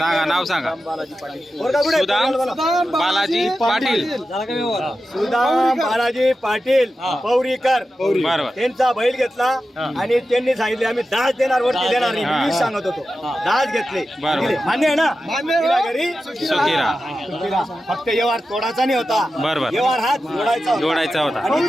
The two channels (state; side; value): normal; both; correlation 0.92